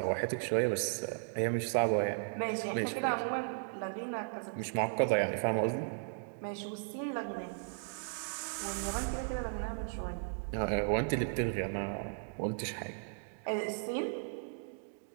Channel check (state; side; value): silent; left; digital silence